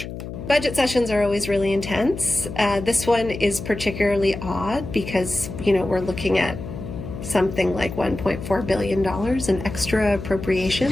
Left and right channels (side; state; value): left; noise; hum, 9 dB below the sound